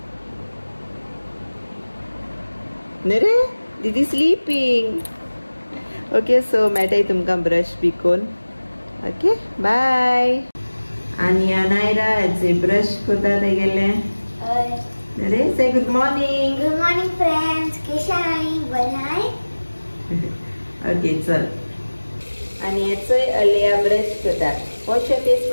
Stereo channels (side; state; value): both; inverted; correlation -1.00